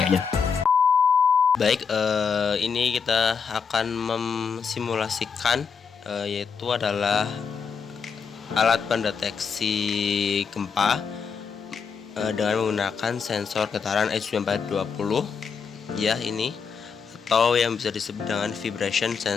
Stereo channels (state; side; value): quieter; right; 6.0 dB